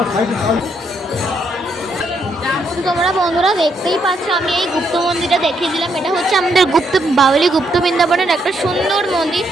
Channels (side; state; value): both; normal; correlation 0.76